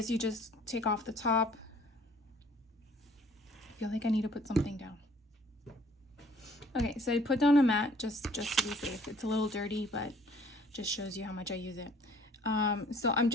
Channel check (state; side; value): normal; both; correlation 0.55